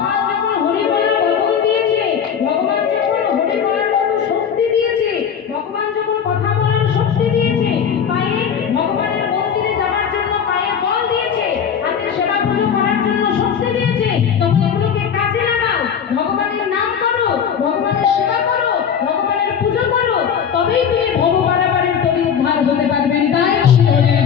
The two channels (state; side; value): quieter; right; 7.6 dB